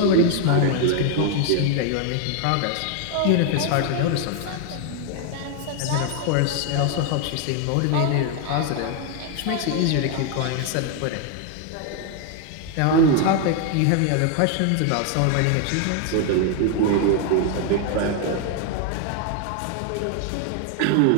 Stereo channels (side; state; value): both; different; correlation 0.01